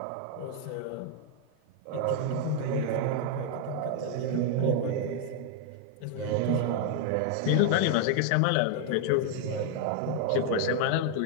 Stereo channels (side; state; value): both; different; correlation 0.00